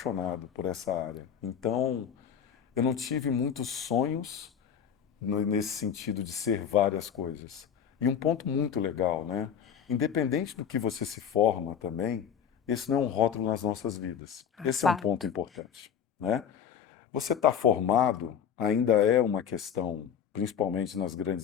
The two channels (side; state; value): right; quieter; 8.1 dB